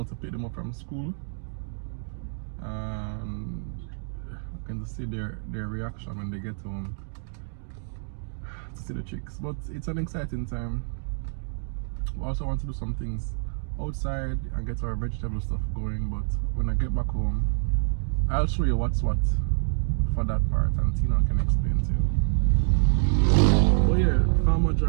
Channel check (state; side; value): silent; left; digital silence